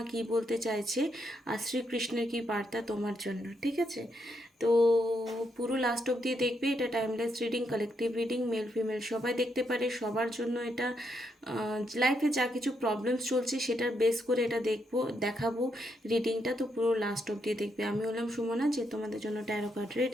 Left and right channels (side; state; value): both; normal; correlation 0.78